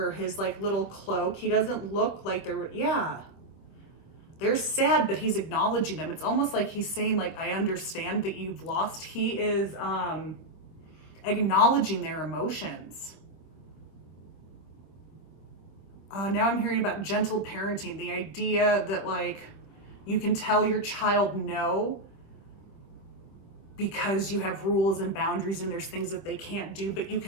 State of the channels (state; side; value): late; right; 25 ms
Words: his like little cloak. He doesn't look like they're sad, but he's acknowledging them. It's almost like he's saying, like, I understand that you've lost. He is acknowledging their emotions. Now I'm hearing about gentle parenting, the idea that like you can tell your child no because you have rules and boundaries and there's things that they can't do, but you